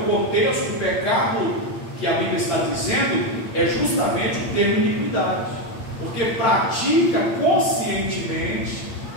contexto do pecado que a Bíblia está dizendo, é justamente o termo iniquidade, porque pratica conscientemente,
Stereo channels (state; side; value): late; right; 8.7 ms